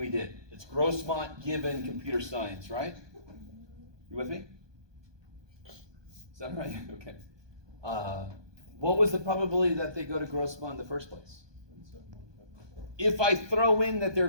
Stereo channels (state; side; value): late; left; 1.2 ms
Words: did. It's Grossmont given computer science, right? You with me? Is that right? Okay. What was the probability that they go to Grossmont in the first place? If I throw in that they're